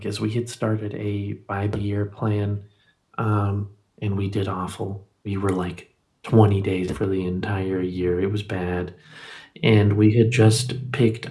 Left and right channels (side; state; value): both; identical; correlation 1.00